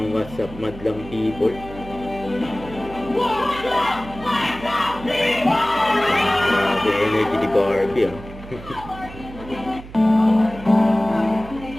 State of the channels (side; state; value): right; noise; hum, 15 dB below the sound